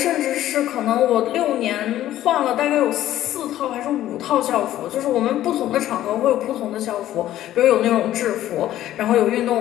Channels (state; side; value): quieter; right; 13.2 dB